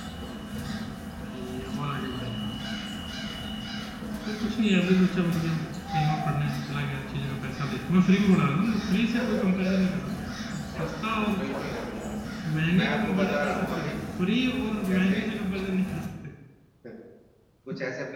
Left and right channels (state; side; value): identical; both; correlation 1.00